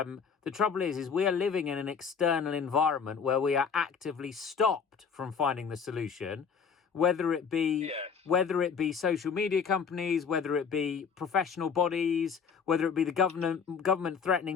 trouble is we are living in an external environment where we are actively stopped from finding the solution, whether it be social media companies, whether it be professional bodies, whether it be the government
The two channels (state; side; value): quieter; right; 6.3 dB